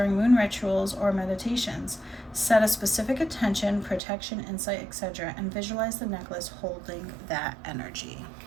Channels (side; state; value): left; drops out; at 4.0 s